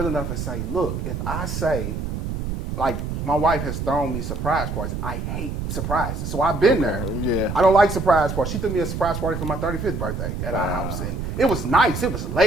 enough and say, look, if I say, like, my wife has thrown me surprise parties. I hate surprises. So I've been there. Yeah. I don't like surprise parties. She threw me a surprise party for my 35th birthday at our house. And it was nice. It was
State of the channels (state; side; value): noise; right; rumble, 4 dB below the sound